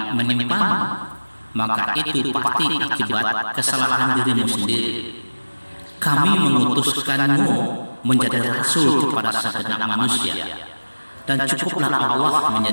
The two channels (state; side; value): inverted; both; correlation -1.00